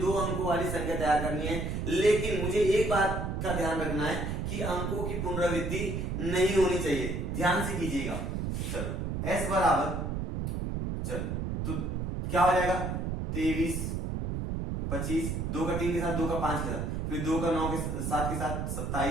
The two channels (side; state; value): right; noise; rumble, 2 dB below the sound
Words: अंकों वाली संख्या तैयार करनी है। लेकिन मुझे एक बात का ध्यान रखना है कि अंकों की पुनरावृत्ति नहीं होनी चाहिए, ध्यान से कीजिएगा। चलो s बराबर, चलो तो क्या हो जाएगा 23, 25, 2 का 3 के साथ, 2 का 5 के साथ, फिर 2 का 9 के 7 के साथ